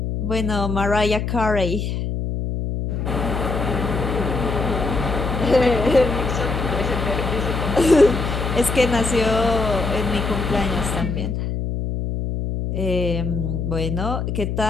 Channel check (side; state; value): left; noise; hum, 2 dB below the sound